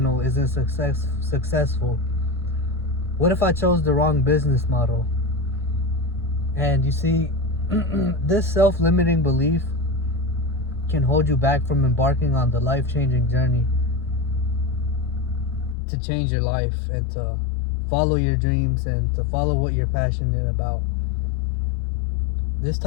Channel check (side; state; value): right; drops out; at 15.8 s